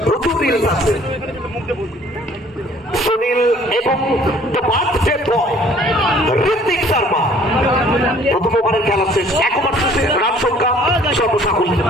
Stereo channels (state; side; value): normal; both; correlation 0.56